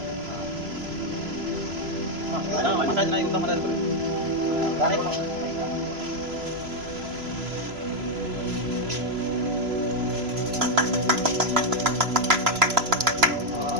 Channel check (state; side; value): late; left; 3.0 ms